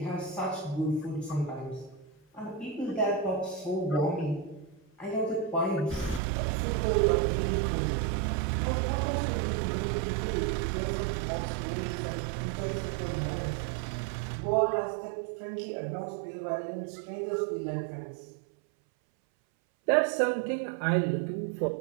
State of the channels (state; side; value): drops out; left; at 6.2 s